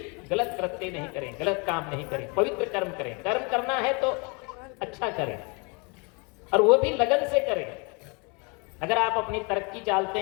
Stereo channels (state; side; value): quieter; right; 31.7 dB